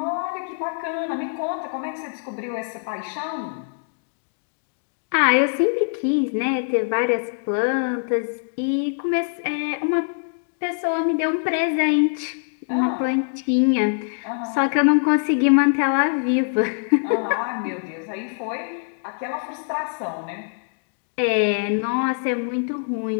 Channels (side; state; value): right; silent; digital silence